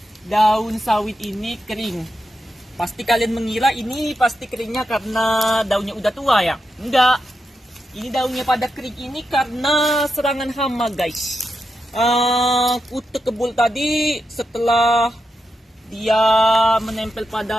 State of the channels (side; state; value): both; normal; correlation 0.87